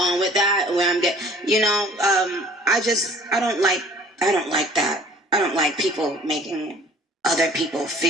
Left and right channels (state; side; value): normal; both; correlation 0.51